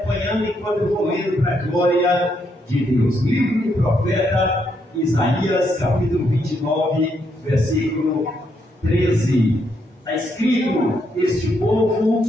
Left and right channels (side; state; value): both; normal; correlation 0.76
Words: enquanto eu vou lendo para a glória de Deus. Livro do profeta Isaías, capítulo 29, versículo 13. Está escrito: este povo